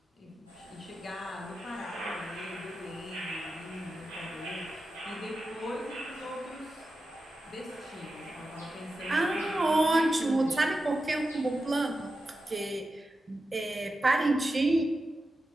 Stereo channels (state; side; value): normal; both; correlation 0.91